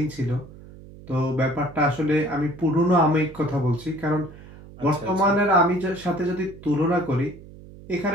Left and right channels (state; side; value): noise; right; hum, 19 dB below the sound